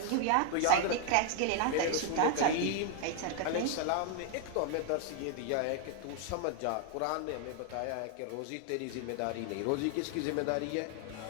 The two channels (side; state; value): both; different; correlation 0.00